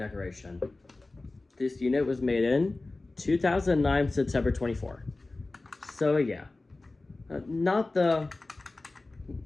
This unit was made in 2009, September 24. So yeah, not the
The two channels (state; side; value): quieter; right; 3.2 dB